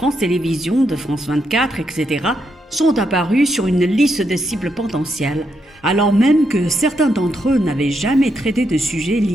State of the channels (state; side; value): normal; both; correlation 0.80